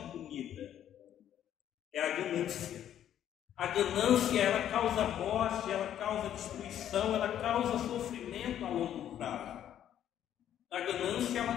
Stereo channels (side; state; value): right; quieter; 10.6 dB